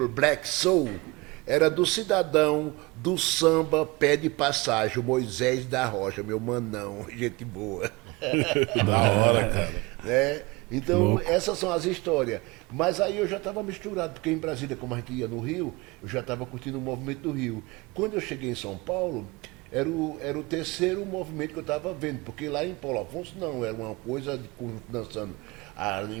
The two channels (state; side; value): quieter; left; 24.4 dB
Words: Black Soul? Era do cidadão do samba Pé de Passagem, o Moisés da Rocha, meu manão, gente boa. Da hora, cara. Né? Então, essas são as histórias. Mas aí eu já estava misturado, porque em Brasília, como a gente ia no Rio, eu já estava curtindo o movimento do Rio. Quando eu cheguei em São Paulo, era o terceiro movimento que eu estava vendo, porque lá em Paulo Afonso não, era uma coisa de conjunto dançando.